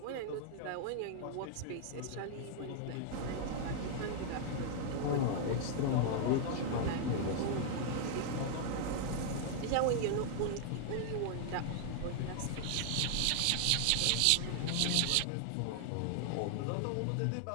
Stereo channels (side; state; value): both; different; correlation -0.01